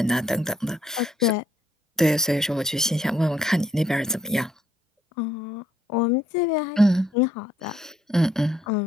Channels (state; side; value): normal; both; correlation 0.69